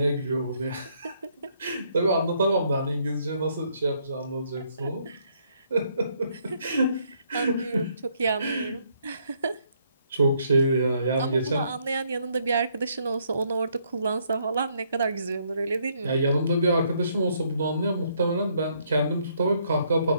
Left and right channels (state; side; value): inverted; both; correlation -0.70